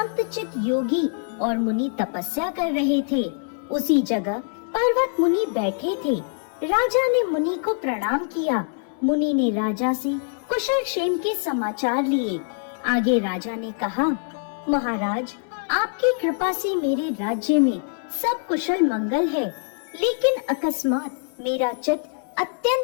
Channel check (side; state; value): right; silent; digital silence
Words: चित्त योगी और मुनि तपस्या कर रहे थे। उसी जगह पर्वत मुनि बैठे थे। राजा ने मुनि को प्रणाम किया। मुनि ने राजा से कुशल क्षेम के समाचार लिए। आगे राजा ने कहा, महाराज, आपकी कृपा से मेरे राज्य में सब कुशल मंगल है, लेकिन अकस्मात मेरा चित्त